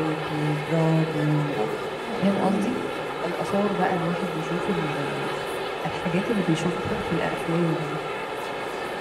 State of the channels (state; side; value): identical; both; correlation 1.00